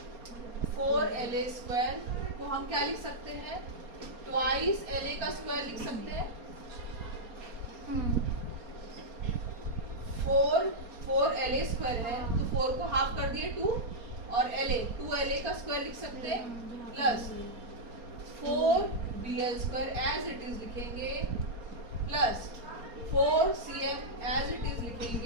4 LA स्क्वायर को हम क्या लिख सकते हैं ट्वाइस LA का स्क्वायर लिख सकते हैं 4 LA स्क्वायर है तो 4 को हाफ कर दिए 2 और टू LA का स्क्वायर लिख सकते हैं plus 4 BL square as it is लिखेंगे plus 4 CM as it is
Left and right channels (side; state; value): left; late; 4.3 ms